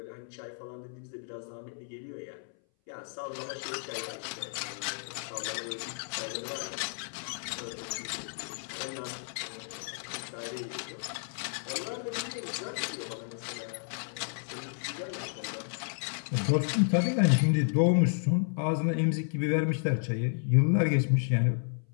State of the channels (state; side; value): silent; right; 56 dB below the other